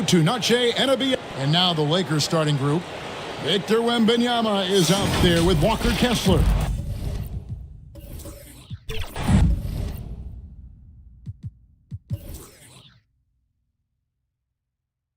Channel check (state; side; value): identical; both; correlation 1.00